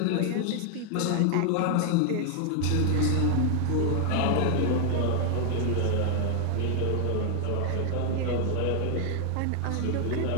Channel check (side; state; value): both; different; correlation 0.00